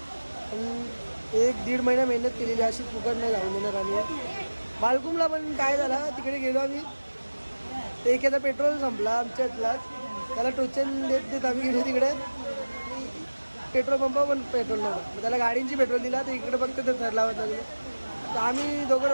पण 1-1.5 महिना मेहनत केलेली अशी फुकट नाही जाऊन देणार आम्ही बालकुमला पण काय झालं तिकडे गेलो आम्ही ते एखादा पेट्रोल संपला आमच्यातलाच त्याला टोचन देत आम्ही गेलो तिकडे पेट्रोल पंप पण पेट्रोल नव्हतं मग त्याला गाडींची पेट्रोल दिला तर इकडे फक्त ते थर लावत लागले तर आम्ही दोघं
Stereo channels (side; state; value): both; inverted; correlation -1.00